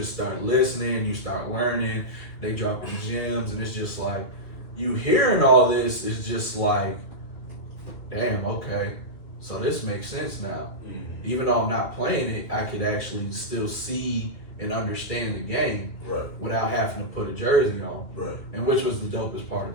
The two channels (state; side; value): late; right; 2.3 ms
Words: start listening, you start learning, they dropping gems, and it's just like, you hearing all this is just like, damn, okay, so this makes sense now. Even though I'm not playing it, I could actually still see and understand the game without having to put a jersey on. And which was the dopest part